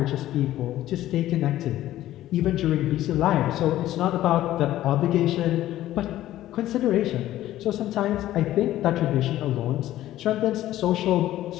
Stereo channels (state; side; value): quieter; right; 14.0 dB